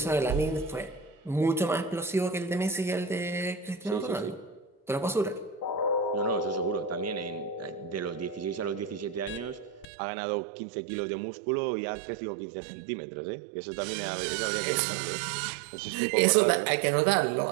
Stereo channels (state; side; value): drops out; left; at 9.9 s